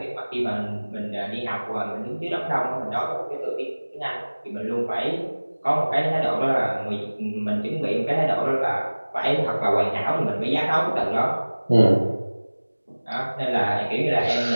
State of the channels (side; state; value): both; inverted; correlation -1.00